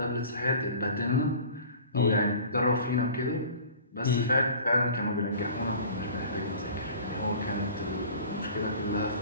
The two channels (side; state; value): both; inverted; correlation -0.43